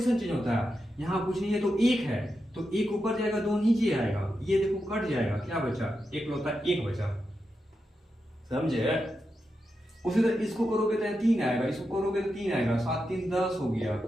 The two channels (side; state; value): both; normal; correlation 0.88